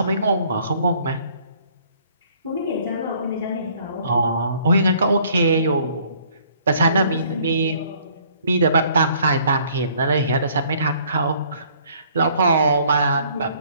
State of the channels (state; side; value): inverted; both; correlation -0.60